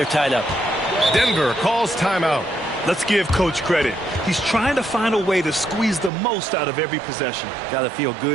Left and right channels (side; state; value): left; drops out; at 6.1 s